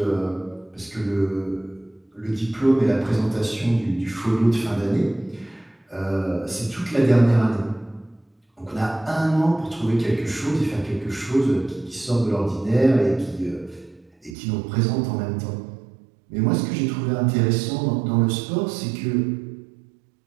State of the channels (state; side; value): drops out; left; at 14.4 s